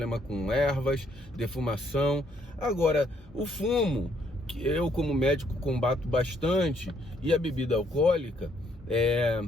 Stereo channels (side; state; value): both; normal; correlation 0.69